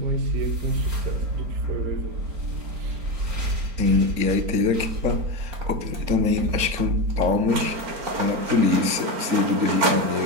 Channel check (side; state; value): left; late; 4.3 ms